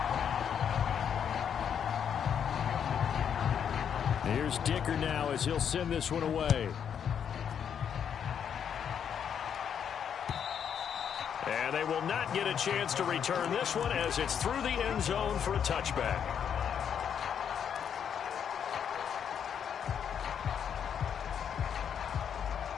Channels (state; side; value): quieter; right; 8.1 dB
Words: Here's Dicker now as he'll send this one away. And they will not get a chance to return this one as it's through the end zone for a touchback.